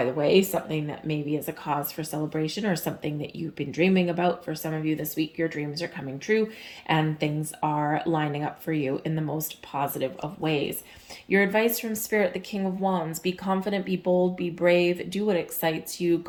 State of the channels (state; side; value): identical; both; correlation 1.00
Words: the way, something that maybe is a cause for celebration, or something that you've been dreaming about. For some of you this week, your dreams are coming true and things are lining up for you in the most positive of ways. Your advice from Spirit, the King of Wands: be confident, be bold, be brave, do what excites you,